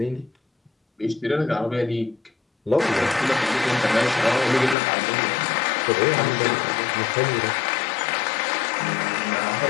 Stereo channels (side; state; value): right; drops out; at 4.8 s